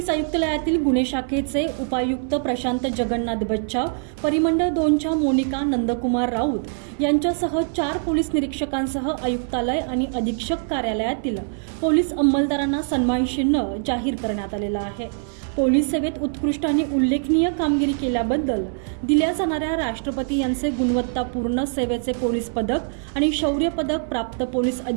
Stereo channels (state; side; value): silent; left; 59 dB below the other